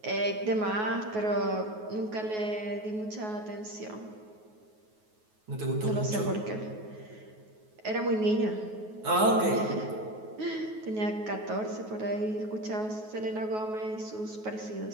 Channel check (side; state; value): left; late; 9.4 ms